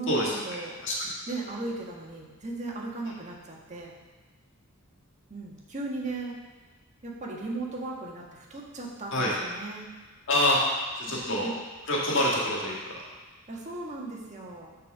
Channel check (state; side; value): normal; both; correlation 0.09